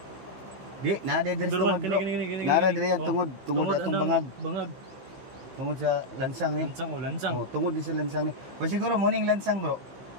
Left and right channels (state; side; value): late; left; 15 ms